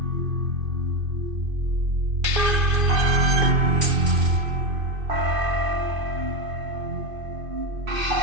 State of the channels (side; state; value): left; late; 2.5 ms